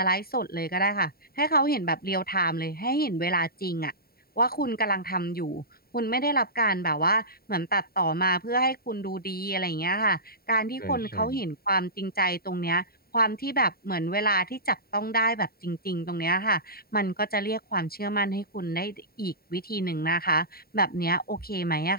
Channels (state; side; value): late; right; 0.44 ms